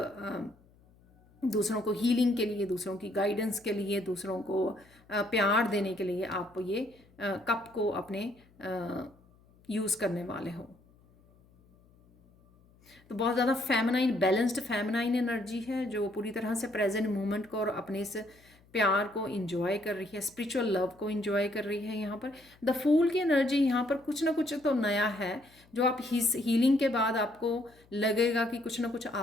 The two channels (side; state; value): left; noise; hum, 29 dB below the sound